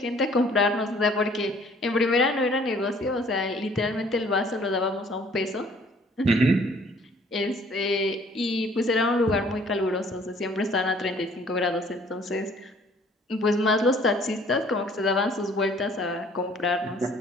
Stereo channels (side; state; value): both; normal; correlation 0.57